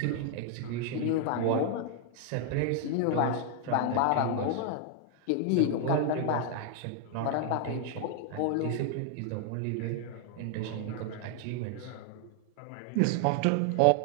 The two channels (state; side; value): different; both; correlation 0.00